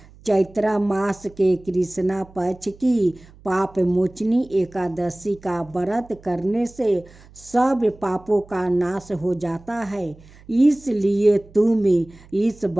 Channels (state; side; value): noise; right; hum, 24 dB below the sound